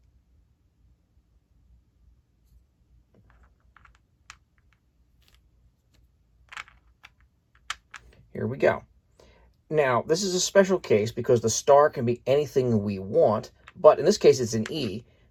here we go. Now, this is a special case because the star can be anything we want, but in this case, it's an E,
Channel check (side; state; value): both; identical; correlation 1.00